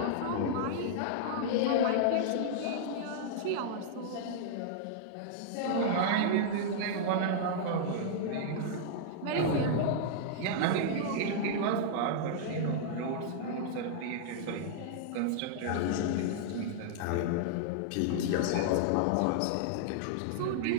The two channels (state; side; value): different; both; correlation -0.02